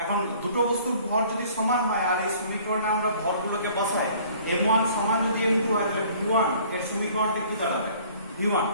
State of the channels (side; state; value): both; inverted; correlation -0.54